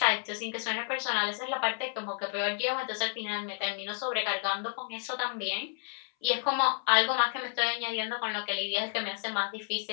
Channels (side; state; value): right; silent; 57 dB below the other